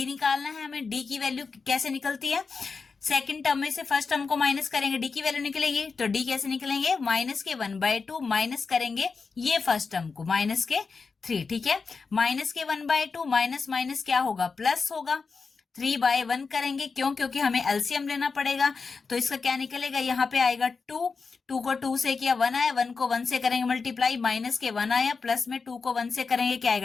निकालना है हमें। D की वैल्यू कैसे निकलती है, सेकंड टर्म में से फर्स्ट टर्म को माइनस करेंगे, D की वैल्यू निकलेगी, तो D कैसे निकलेंगे, माइनस के 1/2 माइनस करेंगे ये फर्स्ट टर्म को, माइनस के 3। ठीक है, माइनस के 1/2 माइनस माइनस क्या होगा, प्लस होगा, 3/1 करेंगे, क्यों, क्योंकि हमें एलसीएम लेना पड़ेगा। तो इसका क्या निकलेगा, यहाँ पे आएगा 2 को 2 से किया 1 आया, 1 को 1 से करेंगे मल्टीप्लाई, माइनस के 1 आया, प्लस में 2 को 1 से करेंगे क्या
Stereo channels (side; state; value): right; quieter; 4.8 dB